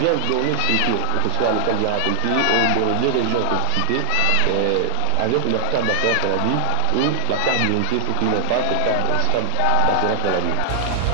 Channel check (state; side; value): different; both; correlation 0.00